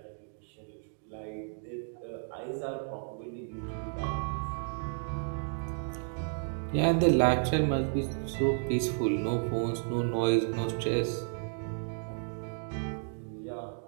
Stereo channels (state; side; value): silent; left; 56 dB below the other